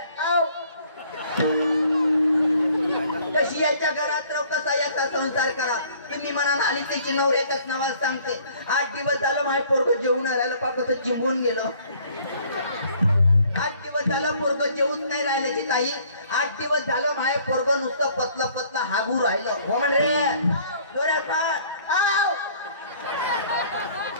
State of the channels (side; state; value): both; inverted; correlation -0.57